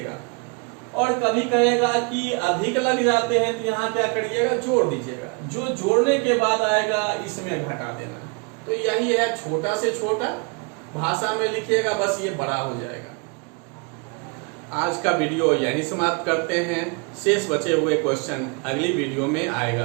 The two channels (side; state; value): left; quieter; 33.4 dB